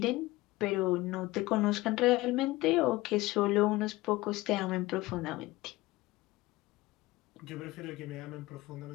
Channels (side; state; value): right; quieter; 19.5 dB